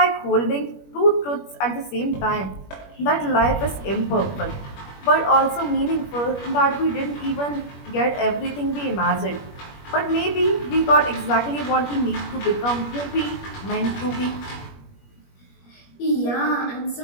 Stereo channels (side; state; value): right; late; 21 ms